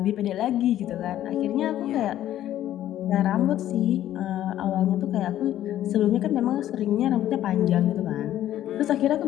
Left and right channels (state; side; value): quieter; right; 12.5 dB